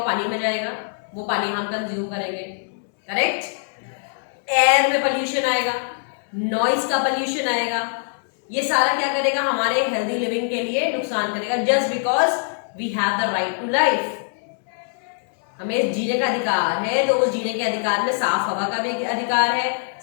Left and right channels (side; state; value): right; silent; digital silence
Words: पानी में जाएगा, वो पानी हम कंज्यूम करेंगे, करेक्ट। एयर में पोल्यूशन आएगा, नॉइज का पोल्यूशन आएगा, ये सारा क्या करेगा, हमारे हेल्दी लिविंग के लिए नुकसान करेगा। Just because we have the right to life, हमें जीने का अधिकार है, तो उस जीने के अधिकार में साफ हवा का भी अधिकार है,